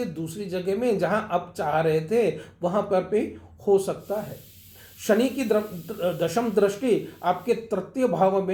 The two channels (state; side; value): identical; both; correlation 1.00